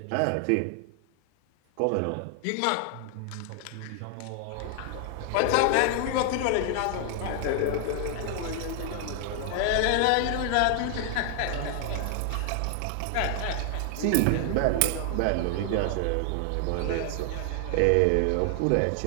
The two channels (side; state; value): both; different; correlation 0.00